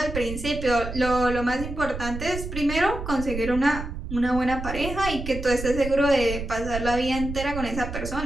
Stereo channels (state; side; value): noise; right; rumble, 8 dB below the sound